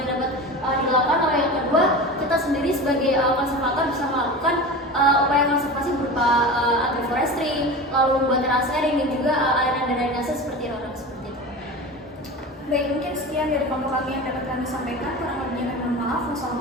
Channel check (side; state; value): both; normal; correlation 0.30